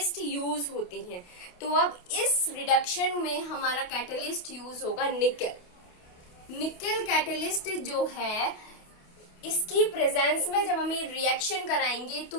यूज होते हैं। तो अब इस रिडक्शन में हमारा कैटलिस्ट यूज होगा निकल। निकल कैटलिस्ट जो है, इसकी प्रेजेंस में जब हम ये रिएक्शन कराएंगे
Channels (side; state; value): right; late; 28 ms